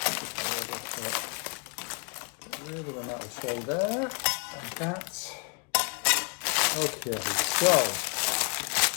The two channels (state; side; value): quieter; right; 36.3 dB